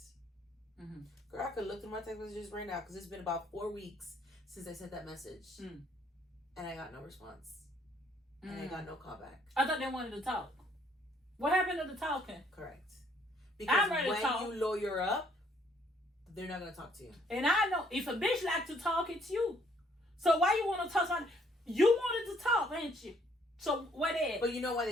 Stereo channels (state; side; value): normal; both; correlation 0.65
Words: Girl, I could look through my text messages right now because it's been about 4 weeks since I sent that message. And I got no response. And I got no callback. I thought they wanted to talk. What happened to the talking? Correct. Because I'm ready to talk. When you lawyer up, they're not going to talk to you. And I know if a bitch like to talk, it's you. So why you want to talk? You wanted to talk, ain't you? So what is? But you know why